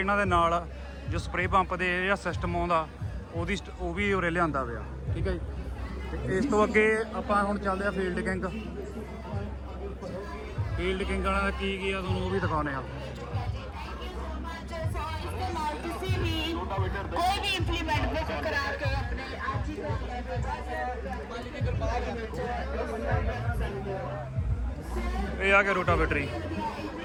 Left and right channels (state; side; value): identical; both; correlation 1.00